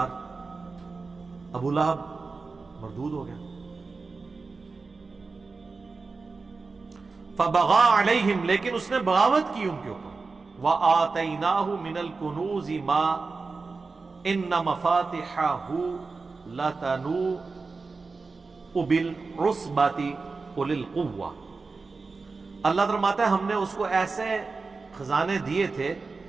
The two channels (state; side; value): quieter; left; 4.2 dB